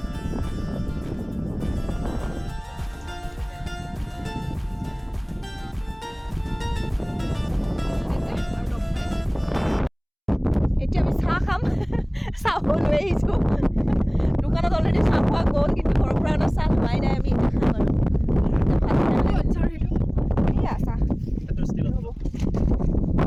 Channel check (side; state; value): both; identical; correlation 1.00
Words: এতিয়া আমি চাহ খাম চাহ লৈ আহিছোঁ দোকানত অলৰেডি চাহ খোৱা গ'ল কিন্তু ঘৰৰ পৰা অনা চাহ লোৱাই নাই আমি এতিয়া খাম আৰু